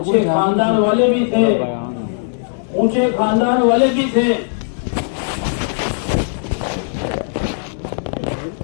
खानदान वाले भी थे, ऊंचे खानदान वाले भी थे,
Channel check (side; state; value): right; silent; 64 dB below the other